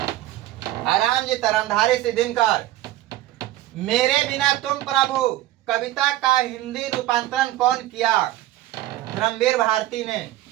आराम जी रामधारी सिंह दिनकर। मेरे बिना तुम प्रभु कविता का हिंदी रूपांतरण कौन किया? धर्मवीर भारती ने।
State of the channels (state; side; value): quieter; left; 15.2 dB